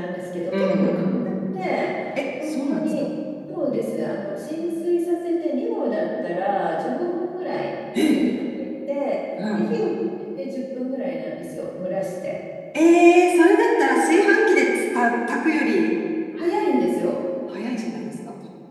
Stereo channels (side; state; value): both; identical; correlation 1.00